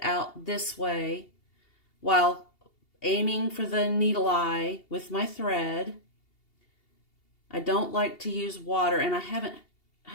out this way while aiming for the needle eye with my thread. I don't like to use water, and I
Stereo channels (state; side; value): late; right; 2.8 ms